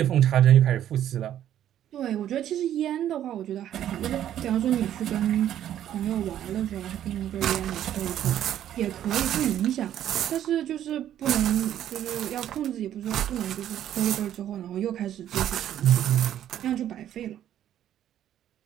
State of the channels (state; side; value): quieter; left; 11.2 dB